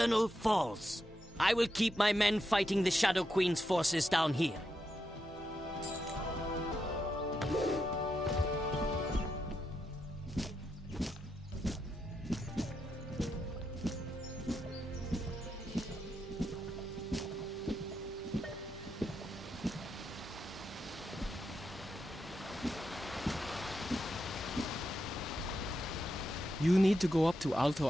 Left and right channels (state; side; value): normal; both; correlation 0.84